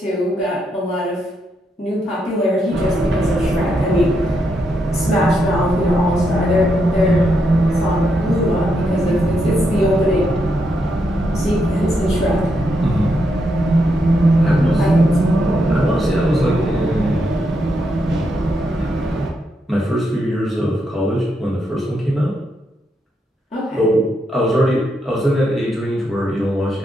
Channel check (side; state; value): both; normal; correlation 0.81